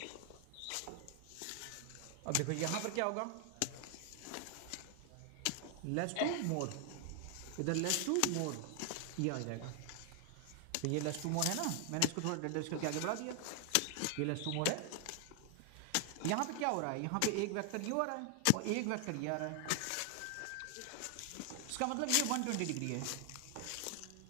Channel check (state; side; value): different; both; correlation 0.00